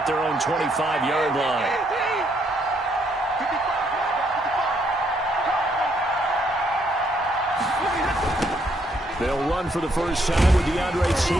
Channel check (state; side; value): normal; both; correlation 0.72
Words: their own 25-yard line. They'll run for the first time with DeAndre